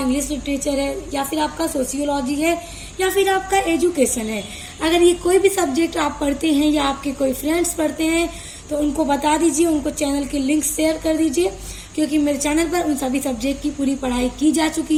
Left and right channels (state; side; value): identical; both; correlation 1.00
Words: लिटरेचर है या फिर आपका सोशियोलॉजी है या फिर आपका एजुकेशन है, अगर ये कोई भी सब्जेक्ट आप पढ़ते हैं या आपके कोई फ्रेंड्स पढ़ते हैं तो उनको बता दीजिए, उनको चैनल के लिंक शेयर कर दीजिए, क्योंकि मेरे चैनल पर उन सभी सब्जेक्ट की पूरी पढ़ाई की जा